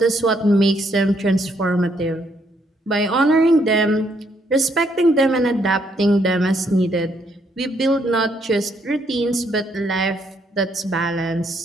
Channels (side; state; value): both; normal; correlation 0.72